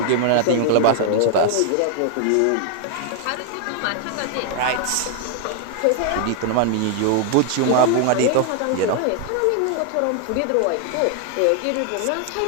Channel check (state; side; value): different; both; correlation 0.00